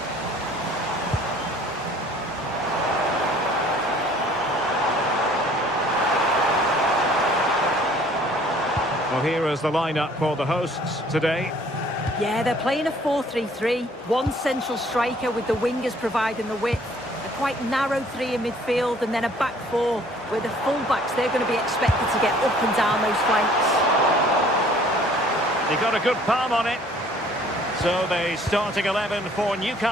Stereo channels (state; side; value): normal; both; correlation 0.56